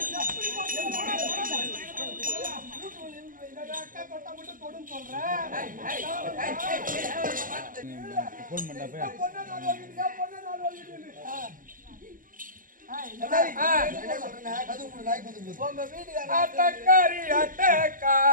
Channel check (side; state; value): left; late; 0.40 ms